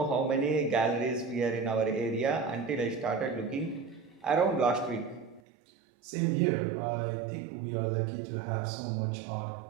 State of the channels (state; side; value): drops out; left; at 5.4 s